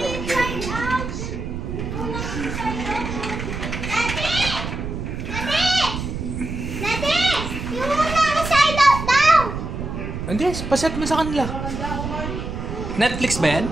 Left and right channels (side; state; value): right; noise; rumble, 5 dB below the sound